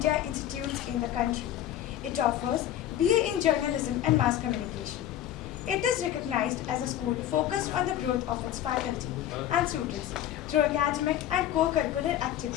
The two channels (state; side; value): quieter; right; 11.9 dB